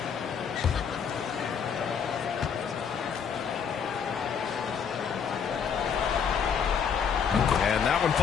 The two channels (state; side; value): quieter; right; 7.0 dB